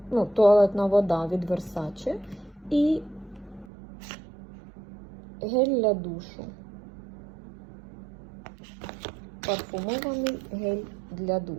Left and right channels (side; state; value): left; drops out; at 3.7 s